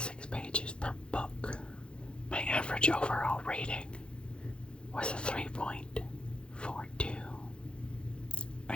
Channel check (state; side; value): late; right; 0.055 ms